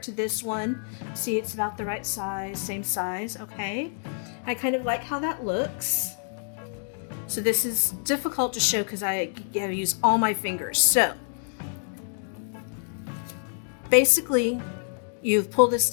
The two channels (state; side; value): silent; right; 60 dB below the other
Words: to this one. See, it's about the right size, same size, okay. I kind of like how that looks. So this is difficult to show because I have to use all my fingers. So basically, you've pulled this